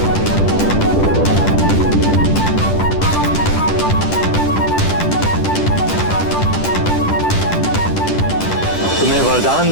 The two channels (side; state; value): right; late; 10 ms